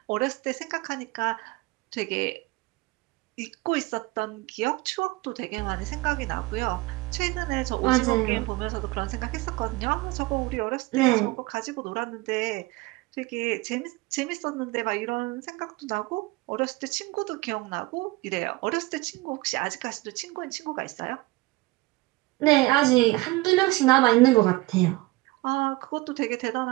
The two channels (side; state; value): left; quieter; 21.5 dB